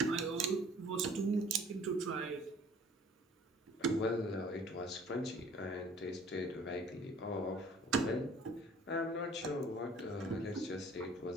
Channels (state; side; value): normal; both; correlation 0.52